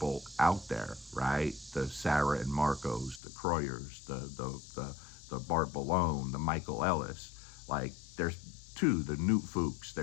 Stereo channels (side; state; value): right; drops out; at 3.2 s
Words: out there, right? The Sarah and Marcos, the Kroyers, the Bart Ballone, the Michael Ellis. Like there's the Newt Fuchs.